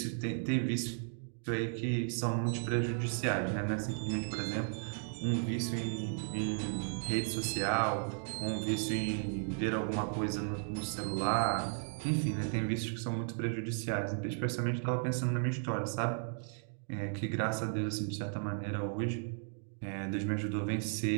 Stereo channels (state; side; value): silent; left; 54 dB below the other